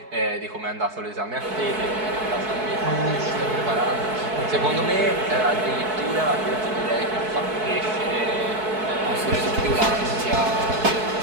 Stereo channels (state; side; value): late; left; 4.6 ms